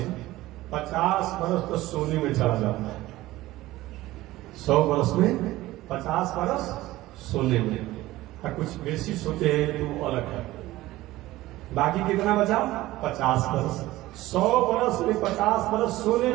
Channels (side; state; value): left; quieter; 17.1 dB